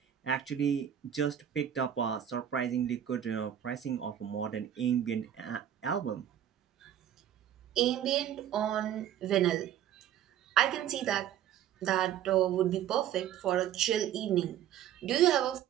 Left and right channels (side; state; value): left; quieter; 10.5 dB